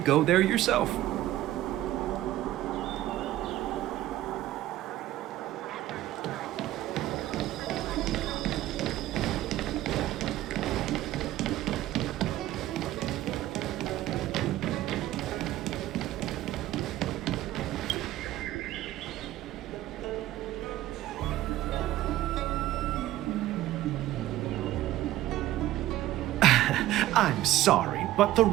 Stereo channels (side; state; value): left; quieter; 14.7 dB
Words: there yourself? I'm sorry, but the